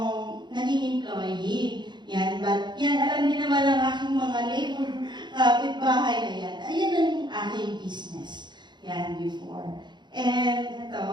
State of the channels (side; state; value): left; late; 0.22 ms